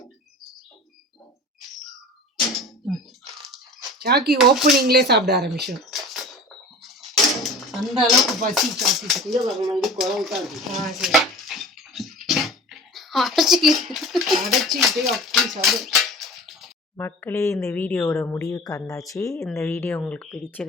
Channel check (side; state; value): both; normal; correlation 0.38